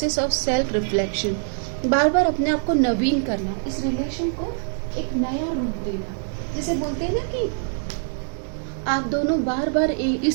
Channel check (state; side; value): silent; left; digital silence